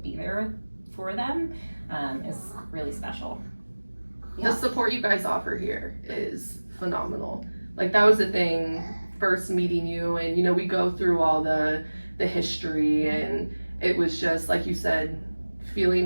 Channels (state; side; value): inverted; both; correlation -1.00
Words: there for them is really special. The support you guys offer here is phenomenal. That was the thing, first meeting you, and we go through all the history, and it was just like you said,